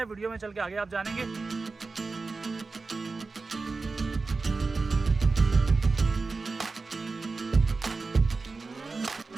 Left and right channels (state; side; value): quieter; left; 4.0 dB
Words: वीडियो में चल के आगे आप जानेंगे।